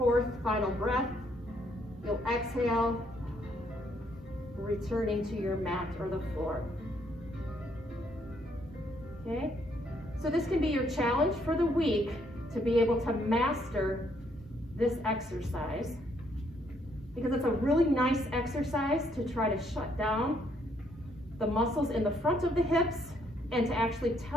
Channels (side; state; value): both; normal; correlation 0.70